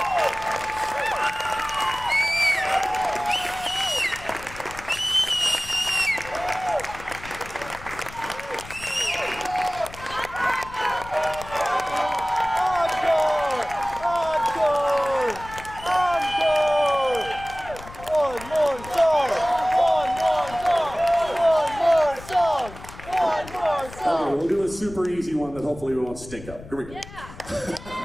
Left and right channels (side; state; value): left; noise; rumble, 16 dB below the sound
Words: Okay, we'll do a super easy one that hopefully we won't stink up. Here we go.